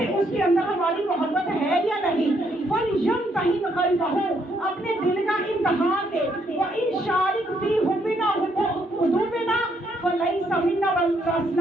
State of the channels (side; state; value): both; normal; correlation 0.72